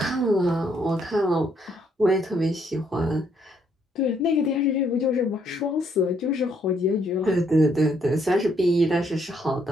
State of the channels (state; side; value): normal; both; correlation 0.71